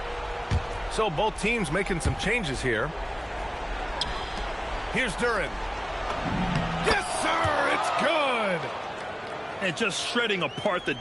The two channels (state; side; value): identical; both; correlation 1.00